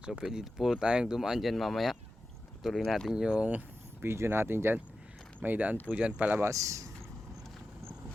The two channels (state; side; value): normal; both; correlation 0.92